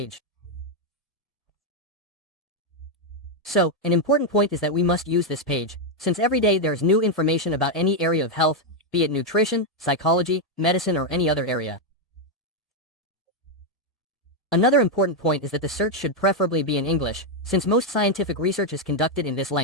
So, an important point is that we must use this page, since every day there's new information about any area of health, be it nutrition, psychology, medicine or any other area. Another important point is that the search should preferably be in English, since most scientific research is conducted in this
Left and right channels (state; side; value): normal; both; correlation 0.02